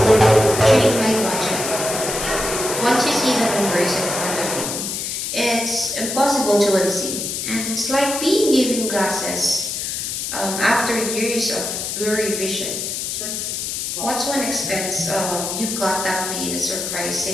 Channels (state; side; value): noise; left; hiss, 3 dB below the sound